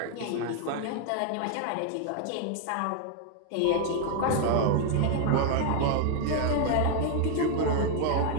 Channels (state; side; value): different; both; correlation 0.00